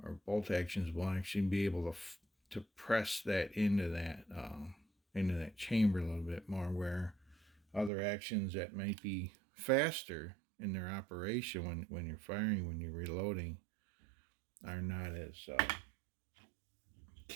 bolt actions, will actually be able to press that into that chamber a little bit more, where other actions that might be faster in their operation when you're firing, when you're reloading, are not as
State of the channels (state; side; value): drops out; left; at 7.9 s